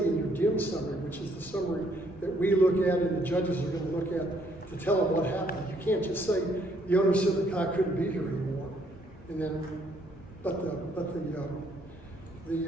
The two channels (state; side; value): noise; left; rumble, 21 dB below the sound